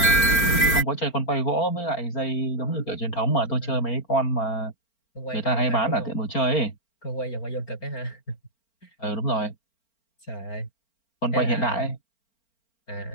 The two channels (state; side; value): late; right; 4.4 ms